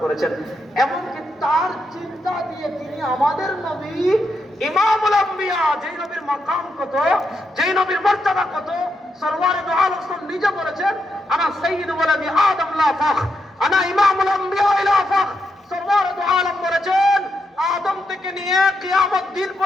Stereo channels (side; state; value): both; normal; correlation 0.83